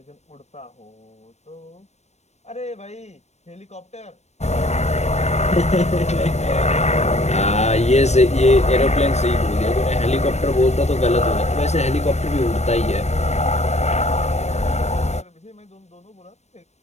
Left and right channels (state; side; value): late; right; 0.32 ms